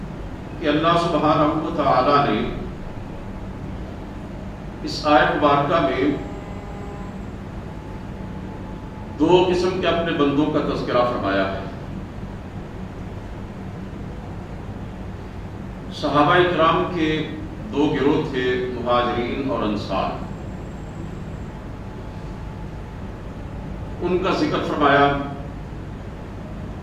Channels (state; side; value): identical; both; correlation 1.00